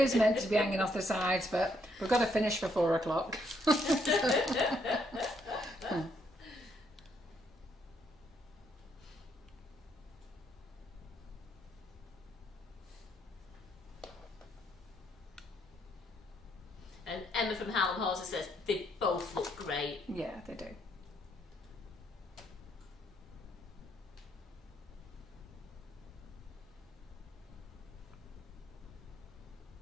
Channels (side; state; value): both; normal; correlation 0.73